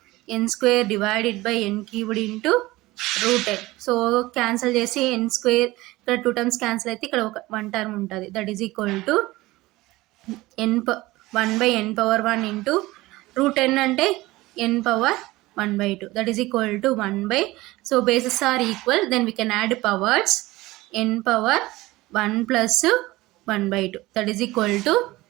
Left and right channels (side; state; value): left; quieter; 19.2 dB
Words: n square divided by n cubed into root n. So cancel చేసి n స్క్వేర్ ఇక్కడ 2 టర్మ్స్ క్యాన్సిల్ అయితే ఇక్కడ ఒక 1 టర్మ్ ఉంటుంది. That is equal to 1 by n power 1 into root n అంటే n power 1 by 2, that is equal to 1 by, so bases are equal, then we can add powers, n power 1 plus 1 by 2, that is equal to